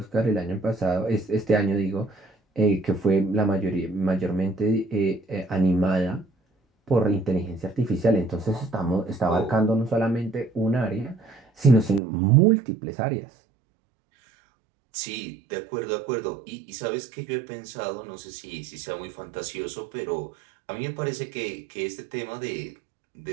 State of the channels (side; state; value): left; drops out; at 12.0 s